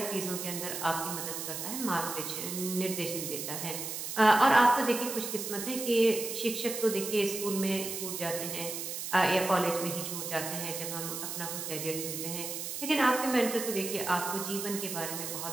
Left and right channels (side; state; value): right; noise; hiss, 5 dB below the sound